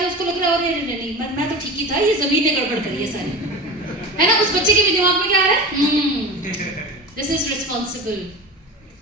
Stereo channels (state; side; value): normal; both; correlation 0.30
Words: उसको लग रहा है अरे नहीं मैं तो ठीक ही था, ये जमीन ने गड़बड़ करी है सारी, है ना? उस बच्चे के भी दिमाग में क्या आ रहा है? This is responsible.